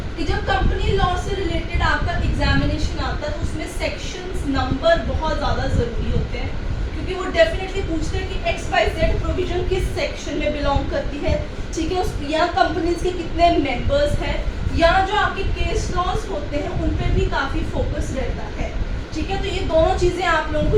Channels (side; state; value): both; identical; correlation 1.00